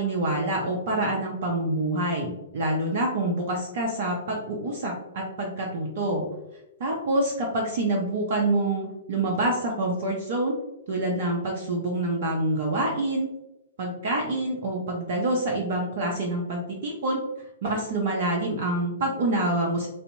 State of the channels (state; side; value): inverted; both; correlation -0.34